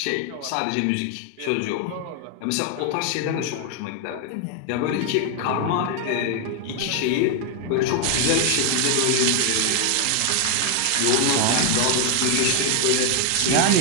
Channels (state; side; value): different; both; correlation 0.00